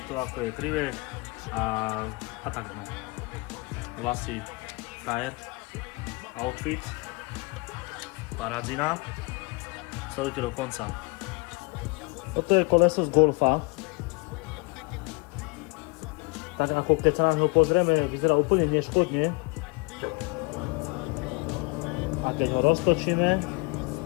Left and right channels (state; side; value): quieter; right; 28.3 dB